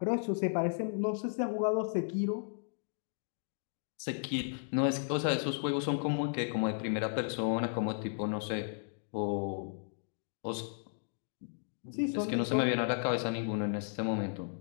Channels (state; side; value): silent; right; digital silence